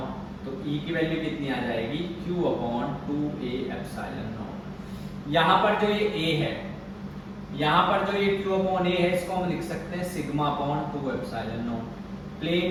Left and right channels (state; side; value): identical; both; correlation 1.00